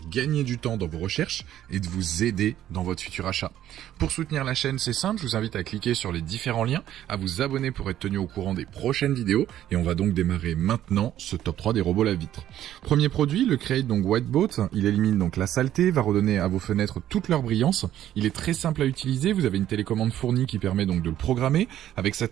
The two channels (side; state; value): left; quieter; 11.9 dB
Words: gagner du temps dans vos recherches et de vous aider dans votre futur achat. Pour soutenir la chaîne, c'est simple. Je vous invite à cliquer sur les différents liens, à vous abonner pour être tenu au courant des prochaines vidéos. Et on va donc démarrer maintenant ce top 3 des robots lave-vitre. Premier produit, le Create donc White Boat. Il élimine donc la saleté, va redonner à vos fenêtres toute leur brillance. Il est très simple à utiliser. Vous avez une télécommande fournie qui permet donc de le programmer. Avec sa